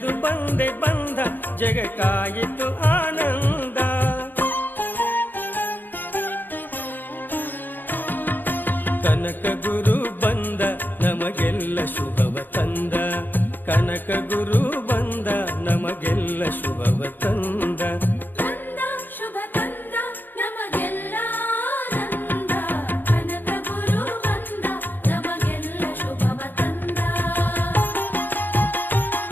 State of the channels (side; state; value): right; late; 0.090 ms